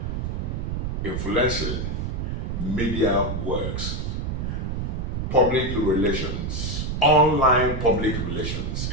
influencing, media works, public relations, online public relations.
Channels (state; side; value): noise; right; rumble, 2 dB below the sound